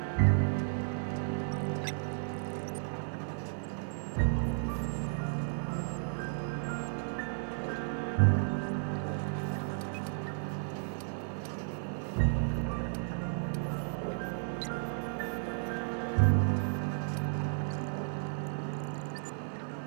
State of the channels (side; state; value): left; silent; digital silence